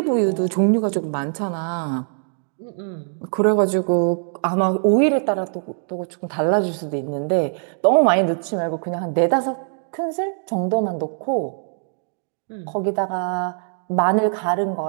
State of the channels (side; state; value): left; silent; digital silence